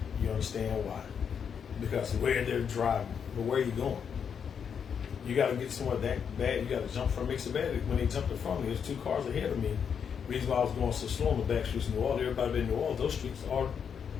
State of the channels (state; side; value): quieter; right; 7.2 dB